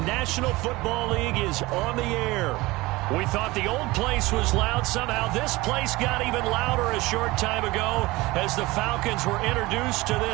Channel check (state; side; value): quieter; left; 20.8 dB